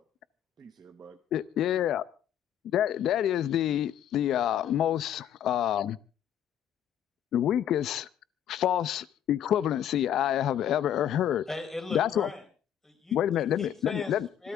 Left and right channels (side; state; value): right; quieter; 10.2 dB